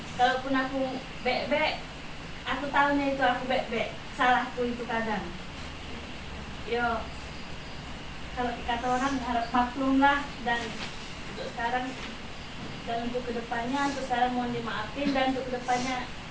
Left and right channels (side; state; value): both; identical; correlation 1.00